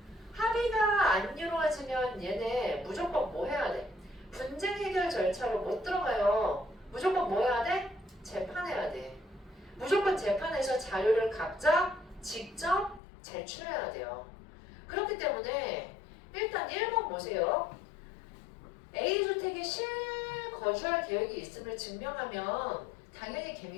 합의가 안 이루어지면 얘네 무조건 뭐 해야 돼? 분쟁 해결 절차로 못 들어가요. 무조건 뭐 해야 돼? 재판해야 돼. 무조건 재판에서 자료를 각자 직접 제출해야 돼요. 그렇기 때문에 일단 1번 보세요. A주택에 실거주할 계획이 있음을 증명하면 당연히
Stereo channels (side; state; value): right; drops out; at 13.0 s